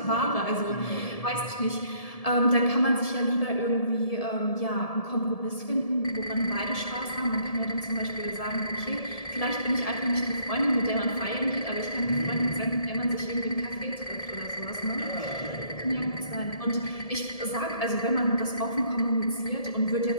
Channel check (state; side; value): late; right; 1.7 ms